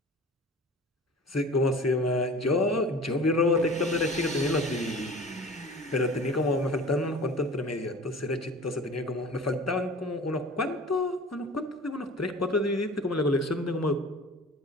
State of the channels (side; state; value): both; normal; correlation 0.41